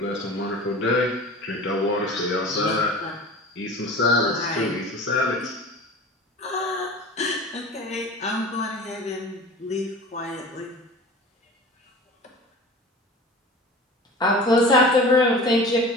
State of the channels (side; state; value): both; normal; correlation 0.38